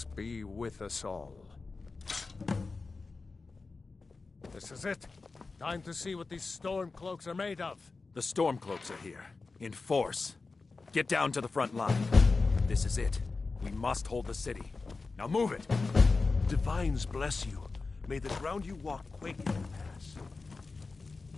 be with us all. This is it. Time to see what these storm cloaks are made of. The Stormcloaks are here, in force. Get down to the front line. This is it. We must hold the city. Now move it! Divines bless you. May the ground you walk quake as you pass.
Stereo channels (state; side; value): quieter; right; 4.0 dB